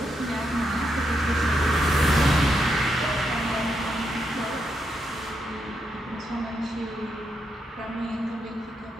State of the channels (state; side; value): normal; both; correlation 0.81